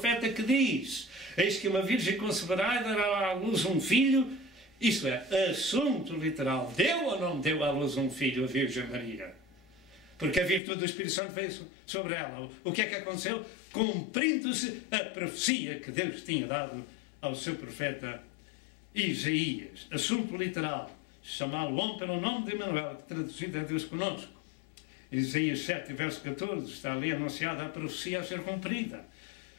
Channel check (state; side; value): drops out; right; at 10.6 s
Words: que diz, eis que uma virgem conceberá e dará à luz um filho. Isto é, assunto literal. Deu ou não deu à luz um filho, a Virgem Maria? Porque a virtude do Espírito Santo veio sobre ela. O que é que aconteceu? Cumprindo-se a profecia que Deus tinha dado ao seu profeta Isaías. Assunto literal. Chamá-lo homem pelo nome de Emanuel, que traduzido é Deus conosco. Isaías 7, verso 14, está ali anunciada a profecia a ser cumprida.